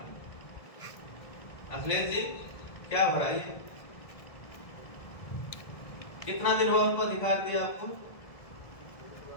अखिलेश जी क्या भराई है? कितना दिन हुआ उनको अधिकार दिया आपको?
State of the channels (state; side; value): late; right; 1.7 ms